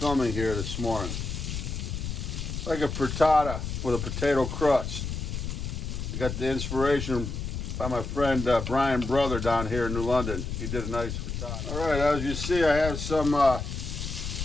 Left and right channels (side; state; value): left; noise; rumble, 5 dB below the sound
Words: here this morning. Like a frittata with a potato crust. I got the inspiration by my friend Brian Brother down here in New London. He did a nice frittata. All right, as you see, I have some